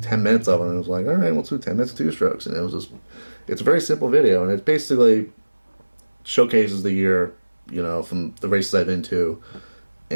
minutes of it? And I was like, all right, we'll do 10 minutes of two strokes. And it's a very simple video, and it basically showcases the year, from the races I've been to,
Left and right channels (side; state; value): both; inverted; correlation -1.00